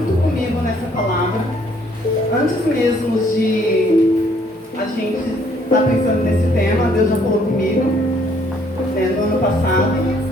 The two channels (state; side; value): normal; both; correlation 0.65